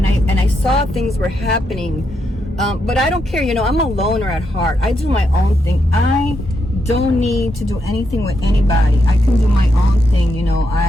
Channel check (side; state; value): both; normal; correlation 0.81